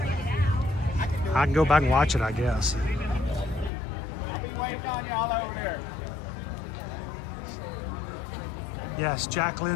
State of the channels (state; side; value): drops out; right; at 3.7 s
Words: I can go back and watch it, I guess. Yes, Jack